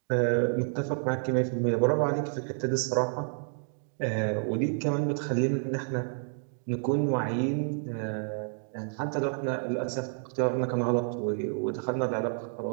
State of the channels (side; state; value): left; silent; 58 dB below the other